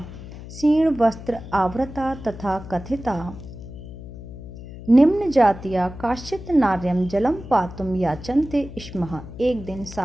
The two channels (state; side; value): noise; left; hum, 13 dB below the sound